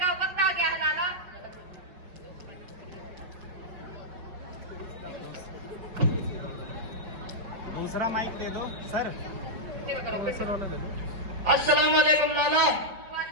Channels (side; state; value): left; late; 5.2 ms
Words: वक्त आ गया है लाला। दूसरा माइक दे दो सर, दूसरा वाला दे दो। अस्सलाम वालेकुम लाला।